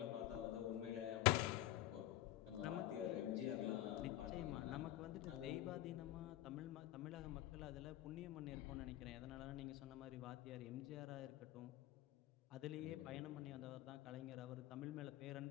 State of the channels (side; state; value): right; quieter; 14.5 dB